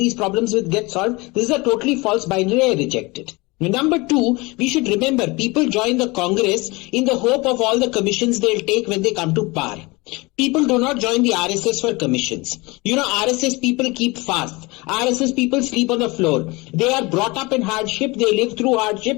problems will get solved? This is a totally false binary. I reject it. Number two, we should remember people join the Congress in the hope of all the commissions they'll take when they come to power. People do not join the RSS for commissions. You know, RSS people keep fast. RSS people sleep on the floor. They are brought up in hardship. They live through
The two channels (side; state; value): right; quieter; 24.3 dB